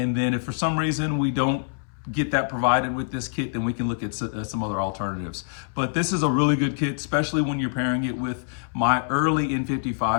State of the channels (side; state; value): right; silent; 62 dB below the other